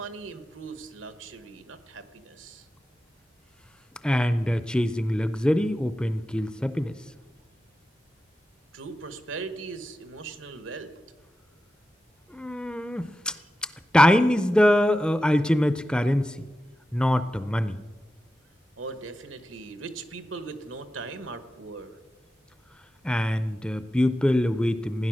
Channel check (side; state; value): both; normal; correlation 0.92